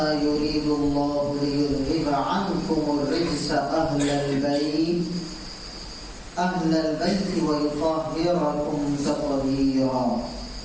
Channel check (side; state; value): both; identical; correlation 1.00